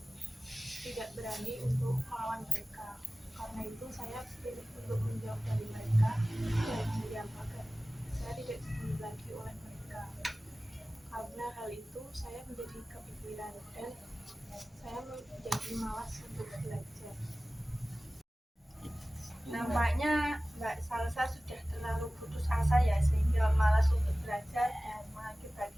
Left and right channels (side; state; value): both; normal; correlation 0.97